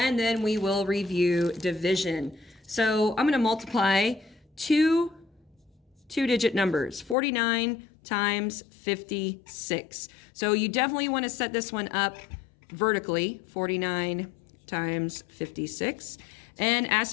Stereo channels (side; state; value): right; drops out; at 7.2 s